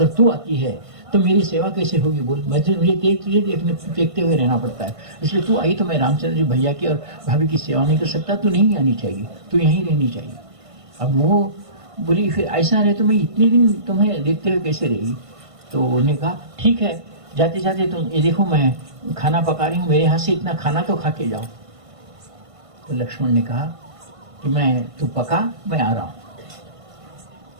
तू आती है तो मेरी सेवा कैसे होगी? बोल, मुझे तुझे देखते हुए रहना पड़ता है, इसलिए तू आई तो मैं रामचंद्र जी भैया की और भाभी की सेवा नहीं कर सकता, तू नहीं आनी चाहिए, तू यहीं रहनी चाहिए। अब वो बोली फिर ऐसा रहे तो मैं इतने दिन तुम्हें देखते हुए कैसे रहेगी? तो उन्हें कहा ठीक है, जाते जाते तुम ये देखो मैं खाना पका रही हूँ, मेरे हाथ से इतना खाना तो खा के जाओ। तो लक्ष्मण ने कहा कि तू पका, मैं आ रहा हूँ।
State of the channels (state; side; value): late; left; 1.5 ms